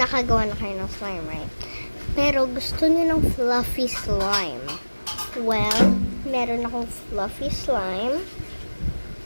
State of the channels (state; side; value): inverted; both; correlation -1.00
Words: na kayo ng slime, right? Pero gusto nyo ng fluffy slime. Well, meron akong fluffy slime